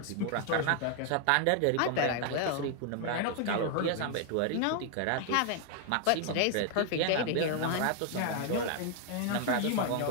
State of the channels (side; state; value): both; different; correlation 0.00